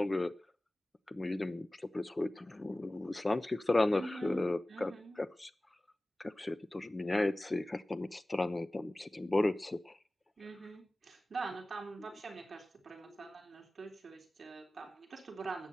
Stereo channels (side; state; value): both; normal; correlation 0.97